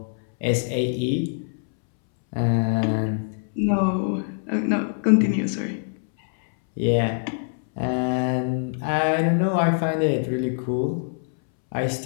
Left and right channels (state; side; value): silent; right; 63 dB below the other